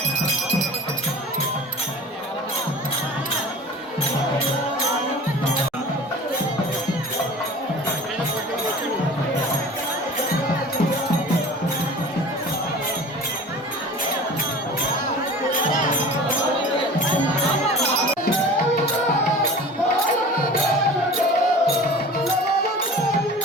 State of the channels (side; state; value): both; normal; correlation 0.39